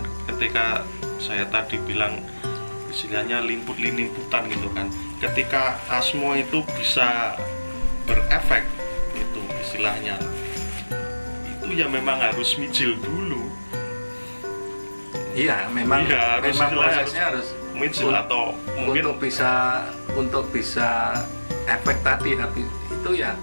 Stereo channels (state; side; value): inverted; both; correlation -1.00